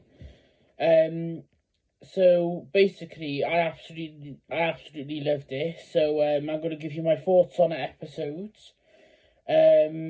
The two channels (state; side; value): identical; both; correlation 1.00